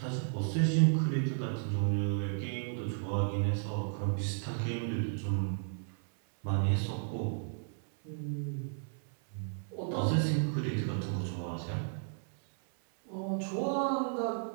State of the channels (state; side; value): silent; left; 55 dB below the other